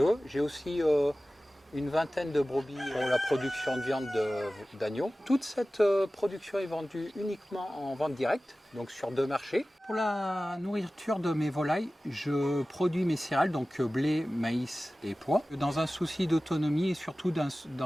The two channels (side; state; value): both; normal; correlation 0.96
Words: J'ai aussi une vingtaine de brebis pour la production de viande d'agneau. Toute cette production est vendue uniquement en vente directe, donc sur 2 marchés. Pour la nourriture de mes volailles, je produis mes céréales, donc blé, maïs et pois, dans un souci d'autonomie et surtout